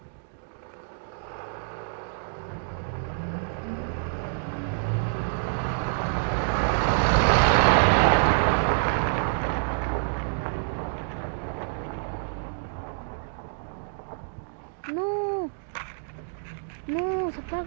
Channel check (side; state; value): left; silent; digital silence